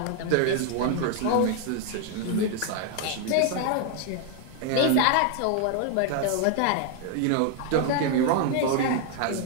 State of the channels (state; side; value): different; both; correlation 0.00